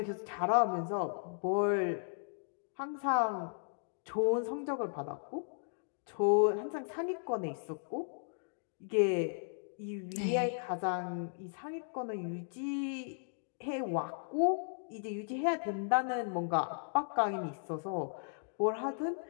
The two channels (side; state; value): right; silent; digital silence